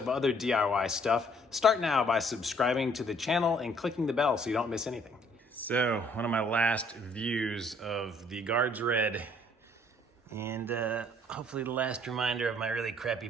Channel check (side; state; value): both; normal; correlation 0.61